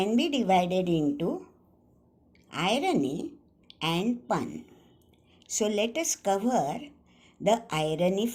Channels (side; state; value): both; identical; correlation 1.00